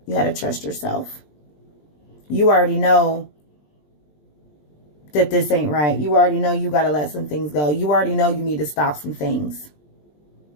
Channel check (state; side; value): late; right; 20 ms